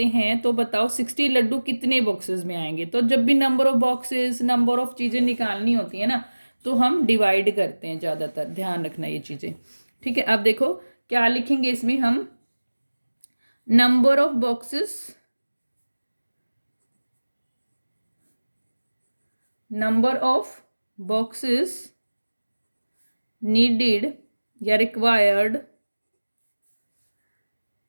हैं, तो बताओ 60 लड्डू कितने बॉक्सेस में आएंगे। तो जब भी number of boxes, number of चीज़ें निकालनी होती है ना, तो हम डिवाइड करते हैं ज़्यादातर, ध्यान रखना ये चीज़ें, ठीक है। अब देखो क्या लिखेंगे इसमें हम, number of boxes, number of boxes needed या required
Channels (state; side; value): inverted; both; correlation -1.00